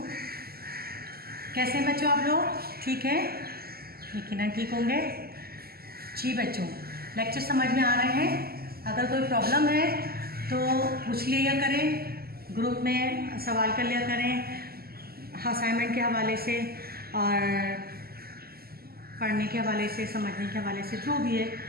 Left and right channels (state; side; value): late; left; 0.45 ms